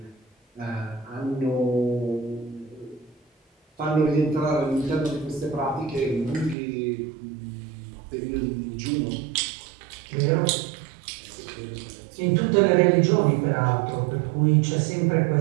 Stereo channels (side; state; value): left; drops out; at 6.6 s